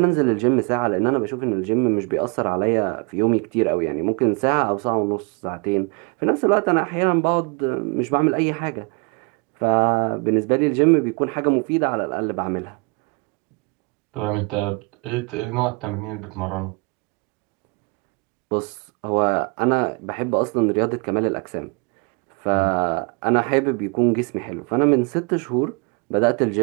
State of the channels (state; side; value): quieter; left; 31.1 dB